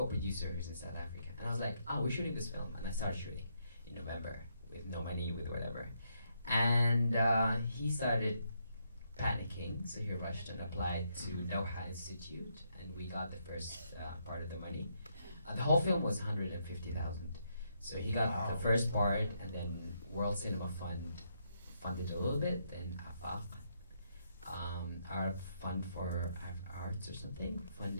who's in South Africa. And I was like, oh, we're shooting this film. And I started shooting in November with no money, with whatever. And he started panicking, so he rushed and applied to Doha Institute, and we got the first part of the money. The whole film was 150,000. So he got the first part, and then World Cinema Fund funded a little bit, then AFAF, our fund for arts or something,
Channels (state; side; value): inverted; both; correlation -0.77